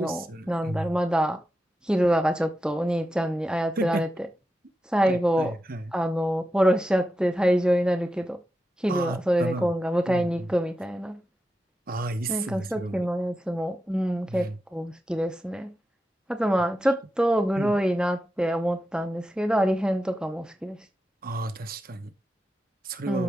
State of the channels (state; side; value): normal; both; correlation 0.90